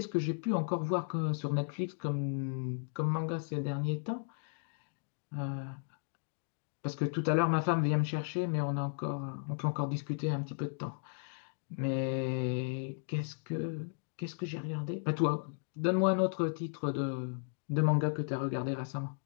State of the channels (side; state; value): right; silent; digital silence